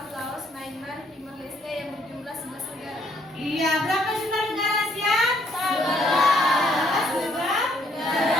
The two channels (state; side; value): normal; both; correlation 0.68